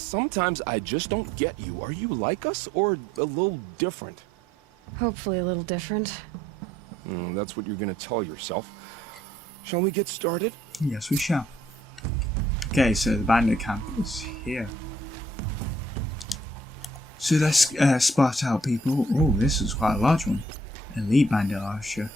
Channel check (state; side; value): normal; both; correlation 0.65